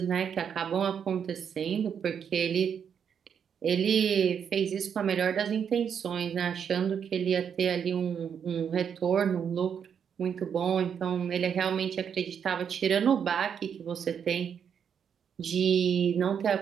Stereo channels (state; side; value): quieter; left; 7.7 dB